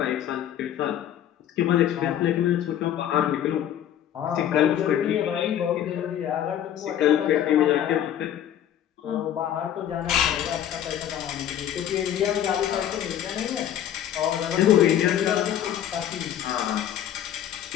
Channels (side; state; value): right; quieter; 10.7 dB